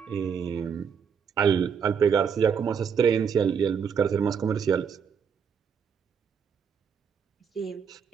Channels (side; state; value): left; quieter; 6.9 dB